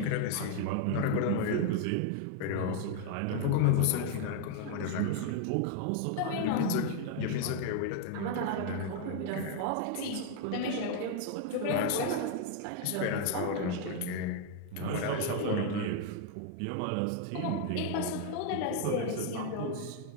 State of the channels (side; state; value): both; different; correlation 0.00